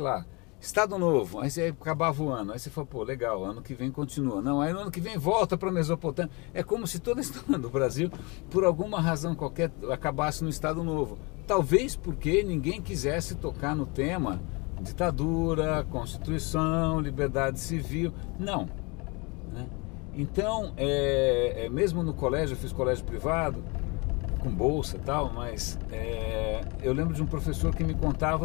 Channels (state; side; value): quieter; right; 28.7 dB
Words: Estado Novo, aí você acabava o ano, aí você falou, pô, legal, ano que vem continua. Não, aí no ano que vem volta para a Mesopotâmia. É como se toda a história do Brasil, por alguma razão qualquer, acabasse no Estado Novo. Talvez porque ninguém quisesse tocar no tema ditadura, Constituição, liberdade civil. Não, né? Então, mesmo no colégio, eu fiz colégio privado, com bolsa e tal, mas eu lembro de um professor que me